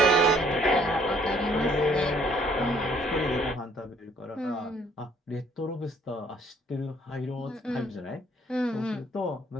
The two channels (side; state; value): both; normal; correlation 0.61